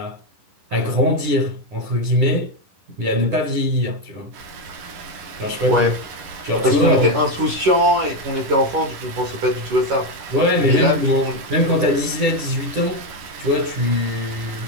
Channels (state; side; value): late; left; 10 ms